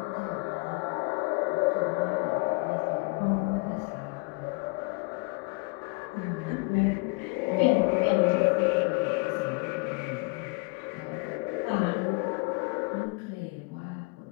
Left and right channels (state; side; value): quieter; right; 28.8 dB